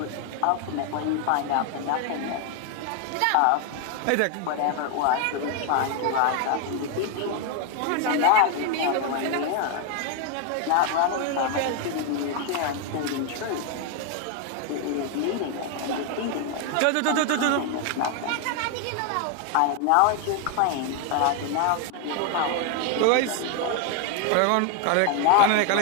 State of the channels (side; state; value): both; different; correlation 0.01